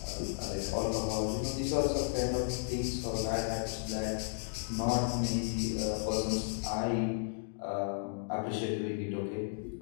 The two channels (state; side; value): silent; right; digital silence